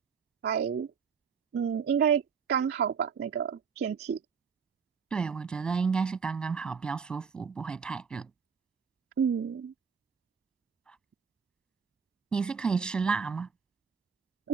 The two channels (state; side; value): quieter; left; 6.2 dB